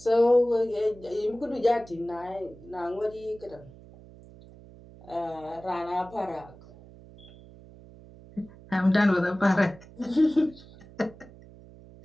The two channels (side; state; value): right; noise; hum, 21 dB below the sound